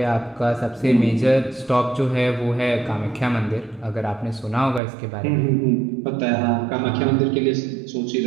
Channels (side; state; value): left; drops out; at 4.8 s